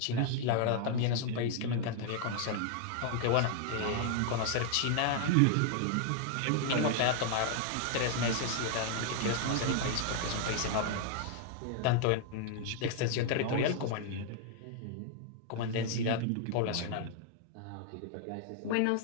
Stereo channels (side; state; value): both; different; correlation -0.01